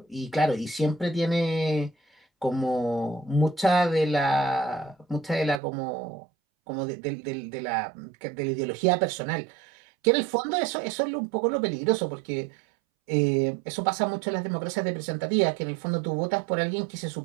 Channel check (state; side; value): drops out; left; at 5.6 s